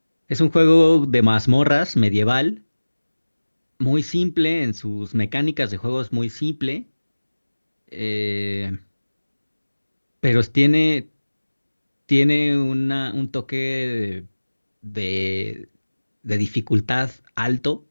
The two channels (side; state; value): both; inverted; correlation -1.00